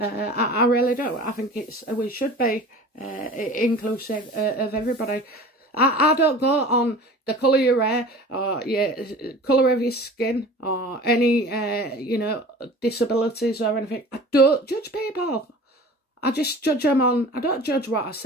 really do. I think we should be inclusive of everybody. I don't go on the colour of your hair or colour of your skin or any, you know, disabilities or anything. I don't judge people. I just judge them on, I don't judge what I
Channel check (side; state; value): both; normal; correlation 0.41